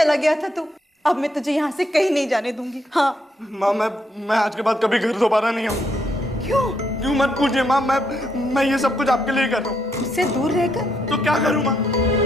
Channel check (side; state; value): both; normal; correlation 0.76